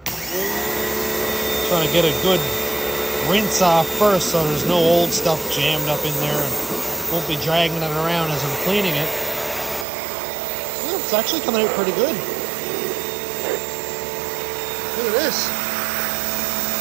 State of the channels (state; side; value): drops out; left; at 9.9 s